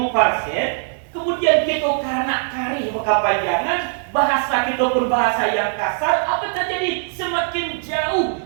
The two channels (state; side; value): silent; left; digital silence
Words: Kemudian kita karena kari kepanjangan, bahasa kita pun bahasa yang kasar, apa terjadi? Semakin jauh